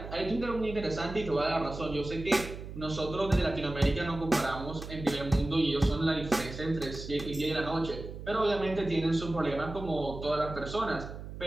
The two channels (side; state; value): right; noise; hum, 10 dB below the sound